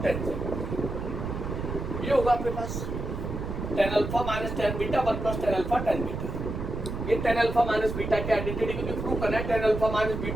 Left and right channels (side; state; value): right; noise; rumble, 5 dB below the sound